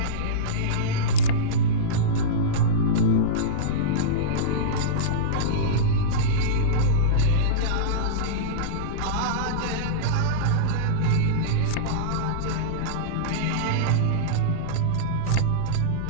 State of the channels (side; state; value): both; different; correlation -0.05